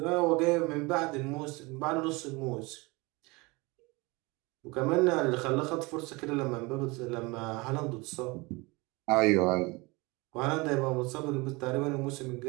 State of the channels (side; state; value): left; quieter; 25.0 dB